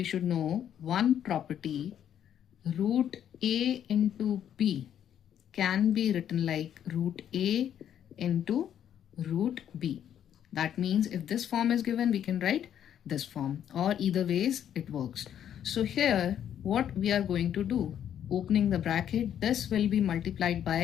should know one property. Root a into b can be written like root a into root b. That means if this form is given, we can write this form, or either ways it works. So here what we are going to do, opening the bracket, this will be multiplied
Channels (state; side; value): quieter; right; 9.8 dB